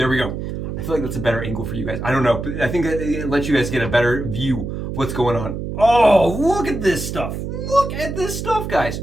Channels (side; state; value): right; noise; hum, 5 dB below the sound